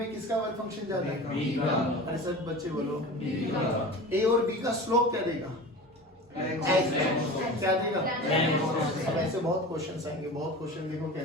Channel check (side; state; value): both; normal; correlation 0.34